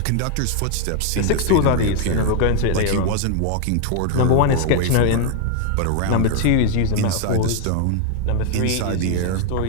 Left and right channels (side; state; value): both; different; correlation 0.00